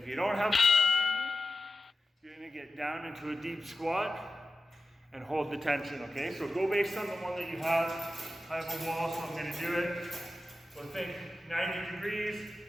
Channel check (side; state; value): both; normal; correlation 0.92